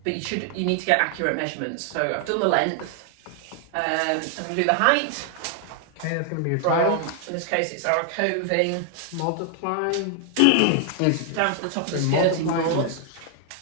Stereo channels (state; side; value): different; both; correlation 0.00